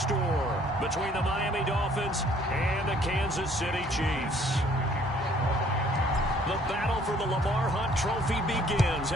between the Miami Dolphins and the Kansas City Chiefs. The battle for the Lamar Hunt Trophy begins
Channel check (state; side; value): normal; both; correlation 0.60